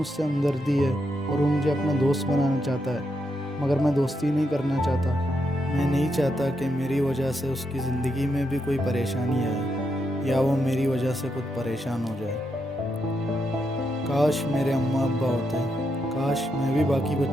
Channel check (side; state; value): both; normal; correlation 0.82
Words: हमदर्दी है और वो मुझे अपना दोस्त बनाना चाहता है, मगर मैं दोस्ती नहीं करना चाहता। मैं नहीं चाहता कि मेरी वजह से उसकी ज़िंदगी में भी कोई परेशानी आए या वो मेरी वजह से खुद परेशान हो जाए। काश मेरे अम्मा अब्बा होते, काश मैं भी बाकी